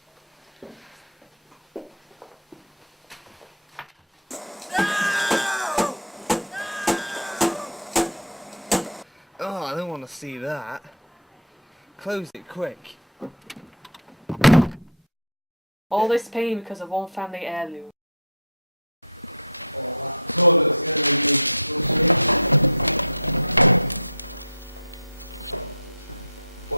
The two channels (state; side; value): normal; both; correlation -0.10